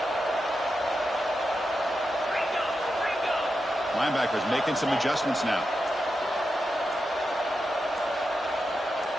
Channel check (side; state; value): both; normal; correlation 0.88